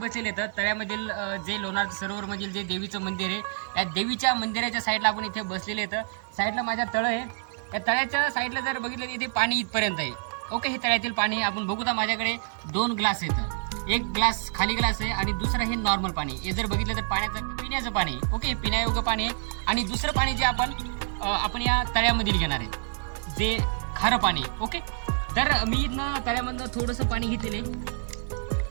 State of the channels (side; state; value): left; silent; digital silence